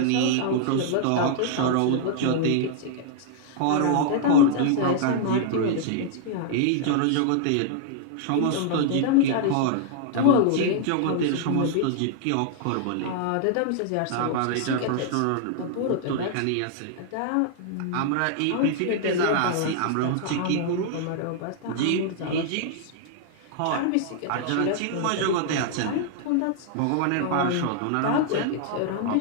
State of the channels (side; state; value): both; different; correlation -0.01